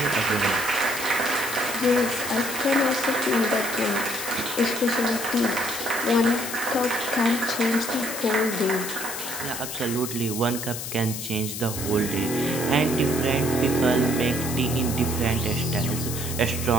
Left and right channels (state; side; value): noise; left; hiss, 6 dB below the sound